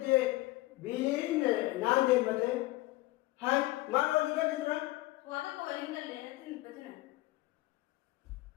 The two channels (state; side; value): quieter; right; 19.2 dB